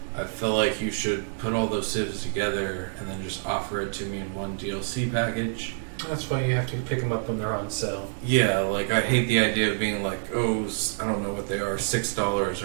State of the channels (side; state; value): left; silent; digital silence